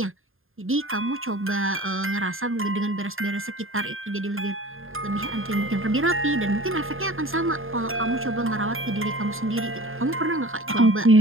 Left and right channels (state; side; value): late; left; 0.60 ms